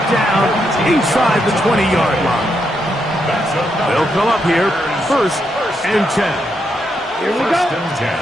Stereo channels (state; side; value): normal; both; correlation 0.80